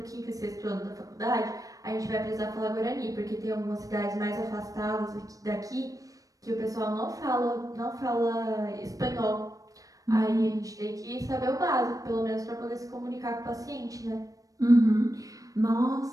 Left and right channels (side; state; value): left; late; 0.17 ms